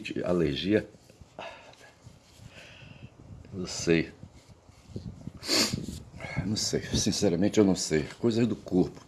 alergia, não sei. Não sei, sinceramente eu não sei. Coisas do corpo.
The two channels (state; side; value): identical; both; correlation 1.00